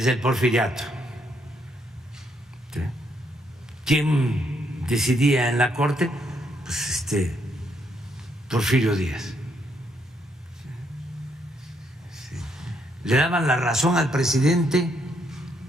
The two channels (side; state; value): both; normal; correlation 0.74